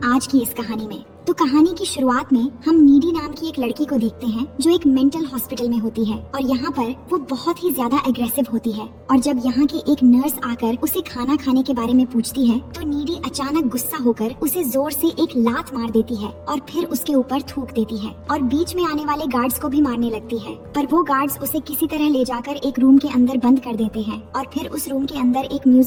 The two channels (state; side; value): identical; both; correlation 1.00